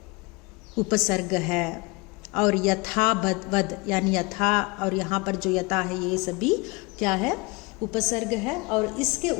उपसर्ग है। और यथावद यानी यथा और यहाँ पर जो यथा है ये सभी क्या है? उपसर्ग है। और इसके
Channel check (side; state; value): right; quieter; 26.0 dB